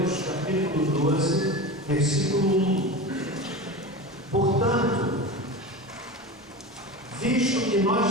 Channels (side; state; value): both; normal; correlation 0.28